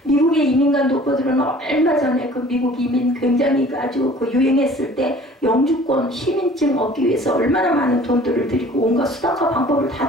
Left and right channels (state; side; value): normal; both; correlation 0.49